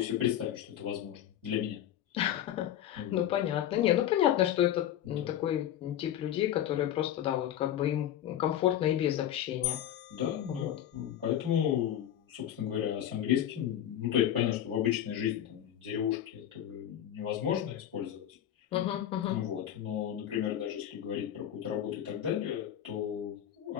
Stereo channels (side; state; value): right; quieter; 11.1 dB